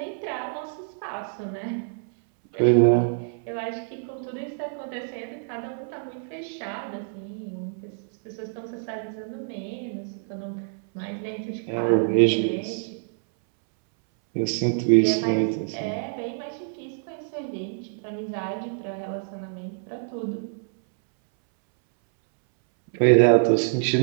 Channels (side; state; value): left; silent; 61 dB below the other